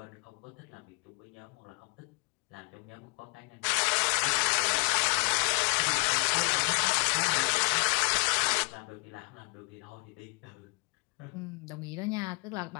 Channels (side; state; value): right; quieter; 32.9 dB